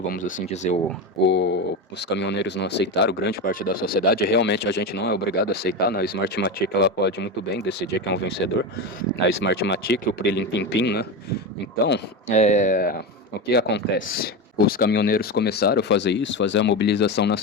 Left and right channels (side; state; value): both; normal; correlation 0.19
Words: assim dizer. Os caminhoneiros não aceitaram, grande parte da sociedade. Realmente a gente não é obrigado a aceitar, né? A Smartmatic ela pode muito bem decidir quem é um vencedor. A Smartmatic, o Prilim Pim Pim, né? Então, o que acontece? Os caminhoneiros começaram a fazer isso, fazer a mobilização